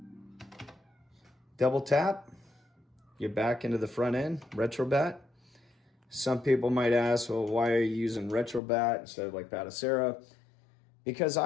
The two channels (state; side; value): drops out; right; at 8.6 s